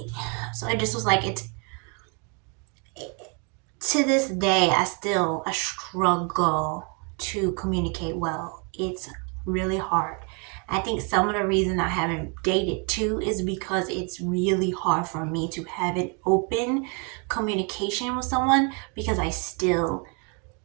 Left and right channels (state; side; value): quieter; left; 35.1 dB